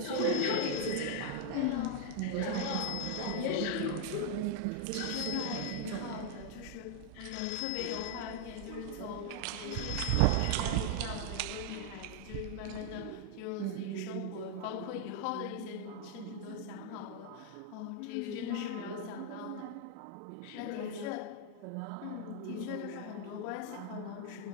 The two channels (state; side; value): different; both; correlation 0.00